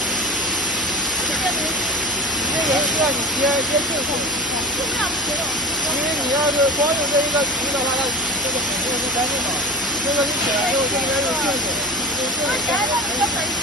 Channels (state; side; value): normal; both; correlation 0.34